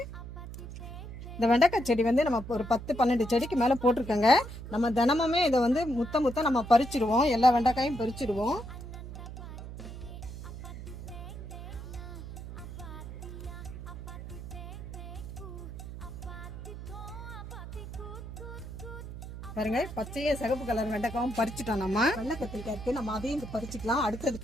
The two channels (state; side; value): noise; right; hum, 10 dB below the sound